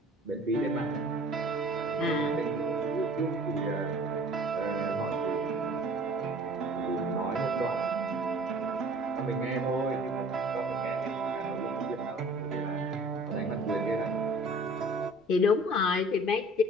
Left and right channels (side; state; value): both; normal; correlation 0.49